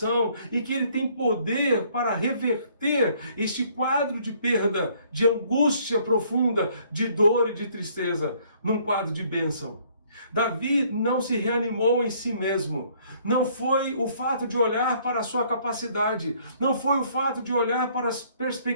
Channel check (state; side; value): inverted; both; correlation -0.62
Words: e que Ele tem poder para reverter este quadro de perda, de angústia profunda, de dor e de tristeza, num quadro de bênção. Davi não se reanimou em si mesmo. Não foi o fato de olhar para a sua capacidade. Não foi o fato de olhar para as